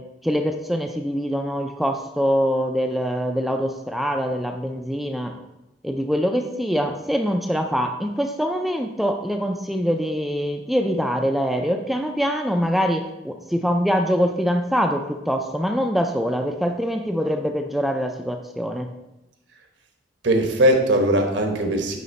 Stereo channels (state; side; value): normal; both; correlation 0.67